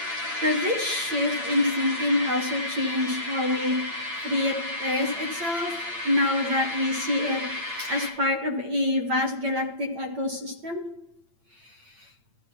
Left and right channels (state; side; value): late; left; 8.8 ms